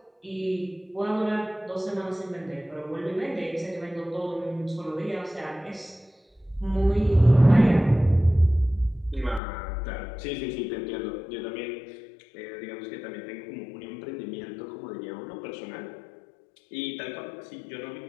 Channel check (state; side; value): drops out; right; at 9.4 s